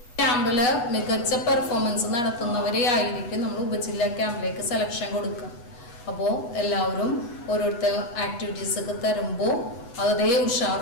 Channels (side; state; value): right; late; 8.3 ms